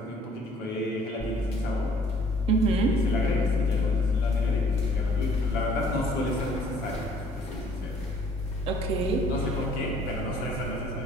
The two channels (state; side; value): normal; both; correlation 0.58